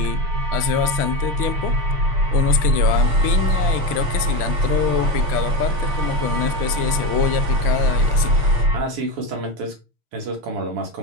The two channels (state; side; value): late; left; 6.1 ms